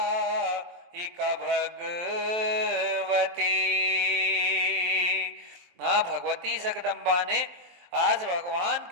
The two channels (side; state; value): left; late; 23 ms